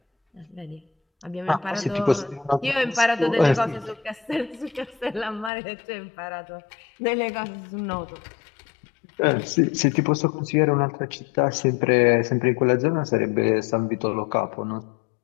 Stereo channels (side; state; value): right; drops out; at 5.5 s